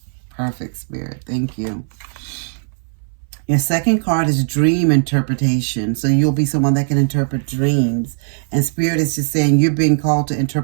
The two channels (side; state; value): left; silent; 64 dB below the other